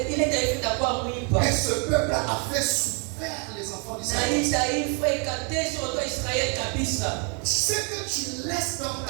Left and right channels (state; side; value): quieter; left; 37.6 dB